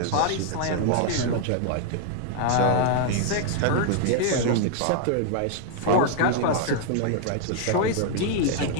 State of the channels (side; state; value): both; different; correlation 0.00